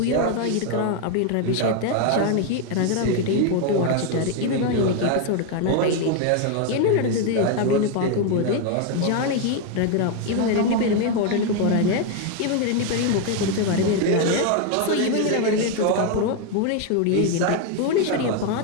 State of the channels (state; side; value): different; both; correlation 0.01